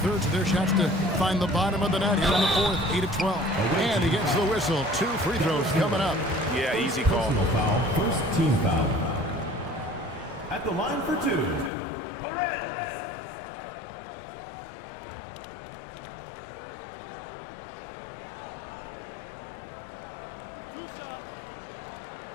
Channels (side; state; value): right; drops out; at 11.7 s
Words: of their shots to find the bottom of the net here in the 4th, 8-12. And he gets the whistle. 2 free throws coming up. Yeah, easy call. Personal foul. First team foul. At the line for 2.